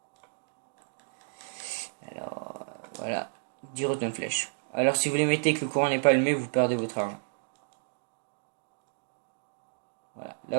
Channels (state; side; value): silent; left; digital silence